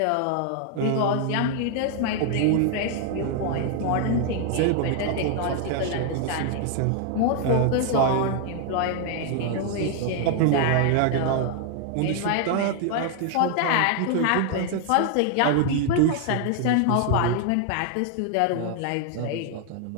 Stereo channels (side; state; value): both; different; correlation 0.00